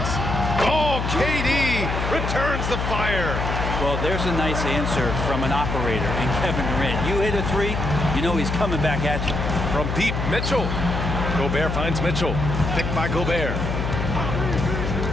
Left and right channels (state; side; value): noise; left; hum, 2 dB below the sound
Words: Oh, KD returns the fire. Well, there's a nice answer from an operator in Kevin Durant. You hit a 3, you know he's coming back at you. From deep, Mitchell. Gobert finds Mitchell. Picked by Gobert.